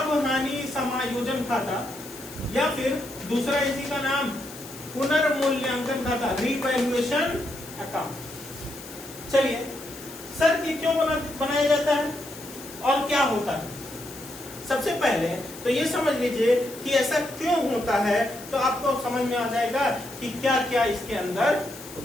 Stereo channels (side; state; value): left; noise; hiss, 15 dB below the sound